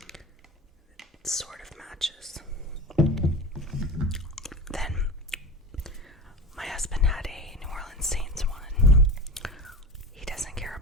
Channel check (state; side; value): normal; both; correlation 0.30